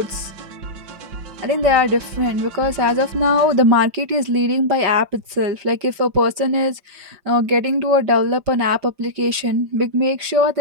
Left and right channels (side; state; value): left; late; 5.4 ms